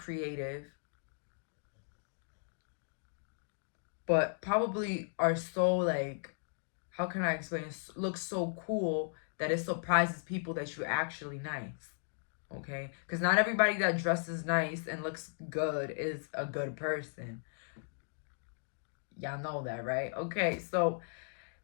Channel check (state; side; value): silent; right; digital silence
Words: but probably are so like, how can I explain? Look so cool that it surprises people that you're actually nice. Okay? Because not everybody that dresses nice and looks good is a good person. Y'all know that, right? Okay, so